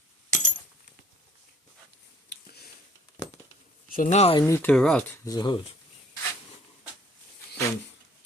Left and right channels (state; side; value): normal; both; correlation 0.57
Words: So now I need to route the hose. So,